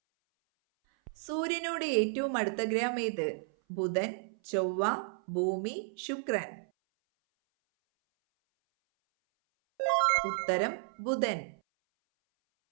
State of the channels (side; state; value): left; silent; 56 dB below the other